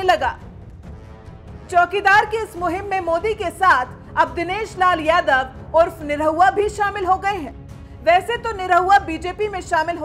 लगा। चौकीदार की इस मुहिम में मोदी के साथ अब दिनेश लाल यादव उर्फ निरहुआ भी शामिल हो गए हैं। वैसे तो निरहुआ बीजेपी में शामिल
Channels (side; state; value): both; identical; correlation 1.00